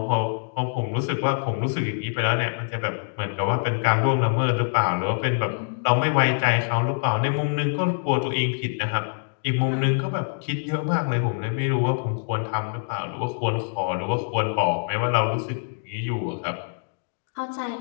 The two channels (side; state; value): right; silent; digital silence